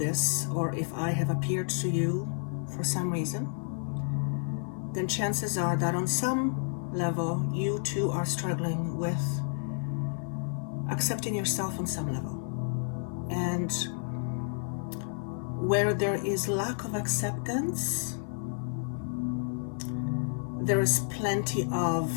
or if I have appeared to you for some reason, then chances are that on some level you too are struggling with accepting yourself on some level. And where there is lack of acceptance, there is plenty of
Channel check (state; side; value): silent; right; 57 dB below the other